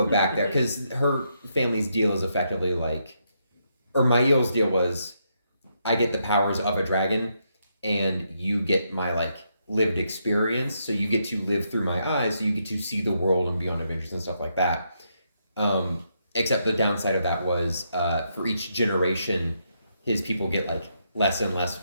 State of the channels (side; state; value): both; inverted; correlation -0.79